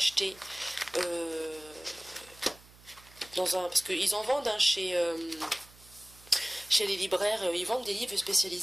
parce qu'ils en vendent chez les libraires, ils vendent des livres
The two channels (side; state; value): right; noise; hum, 24 dB below the sound